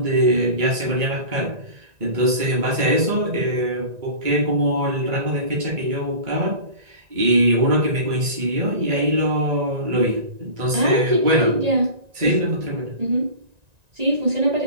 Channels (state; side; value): late; left; 1.9 ms